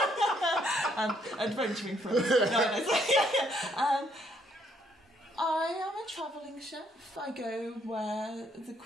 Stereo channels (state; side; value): normal; both; correlation 0.70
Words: And adventuring friends. I am a travelling chef. I go where the